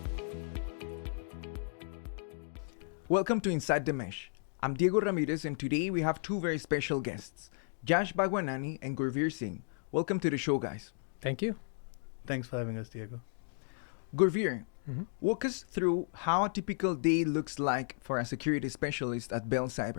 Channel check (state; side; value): silent; right; digital silence